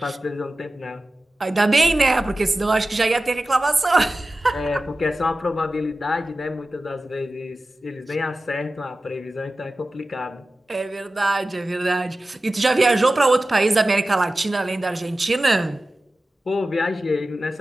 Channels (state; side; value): normal; both; correlation 0.95